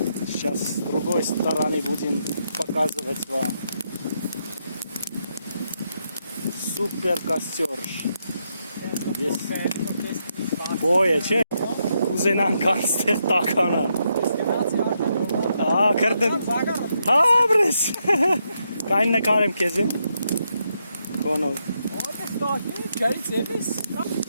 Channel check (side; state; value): both; inverted; correlation -0.80